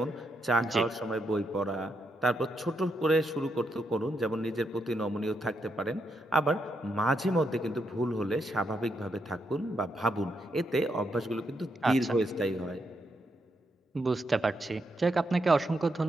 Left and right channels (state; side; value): normal; both; correlation 0.80